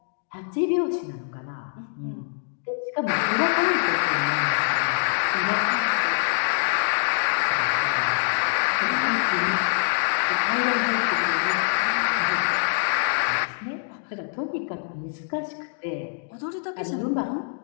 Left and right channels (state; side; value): silent; right; digital silence